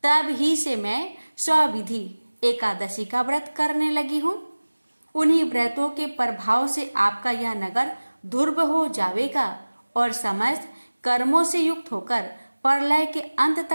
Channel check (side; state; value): both; inverted; correlation -1.00